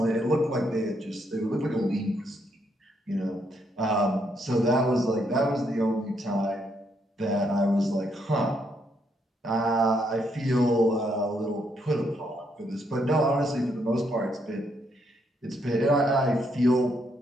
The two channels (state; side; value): normal; both; correlation 0.75